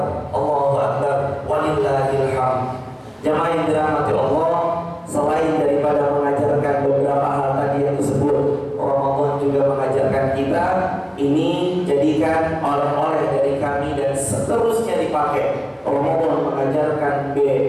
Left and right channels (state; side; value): identical; both; correlation 1.00